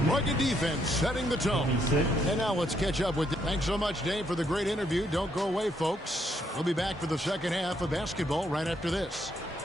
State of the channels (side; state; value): both; normal; correlation 0.74